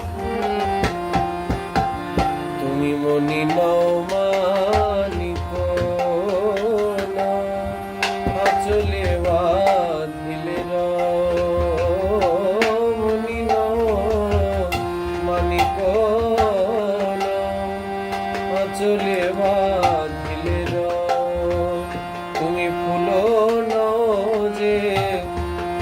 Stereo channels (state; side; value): identical; both; correlation 1.00